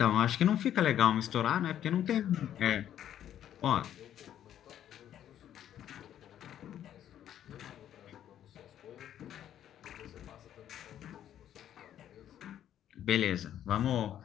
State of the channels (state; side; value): quieter; right; 10.8 dB